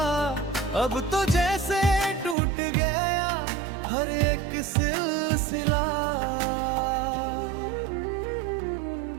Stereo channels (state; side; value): drops out; left; at 2.4 s